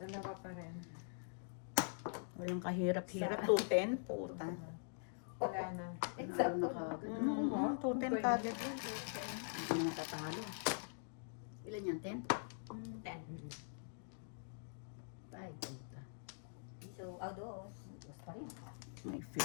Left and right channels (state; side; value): silent; right; digital silence